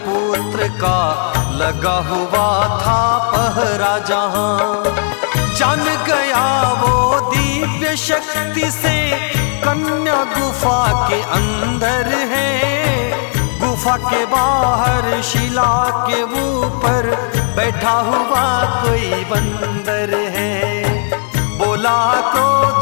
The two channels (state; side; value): silent; right; 58 dB below the other